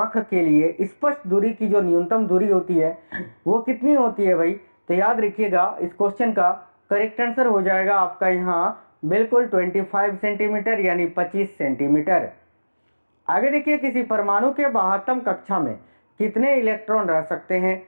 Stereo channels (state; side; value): inverted; both; correlation -1.00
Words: के लिए स्पष्ट दूरी की जो न्यूनतम दूरी होती है वो कितनी होती है भाई, तो याद रखिएगा इस क्वेश्चन का करेक्ट आंसर हो जाएगा आपका यहाँ बिल्कुल 25 सेंटीमीटर यानी 25 सेंटीमीटर। आगे देखिए, किसी परमाणु के बाह्यतम कक्षा में कितने इलेक्ट्रॉन रह सकते हैं?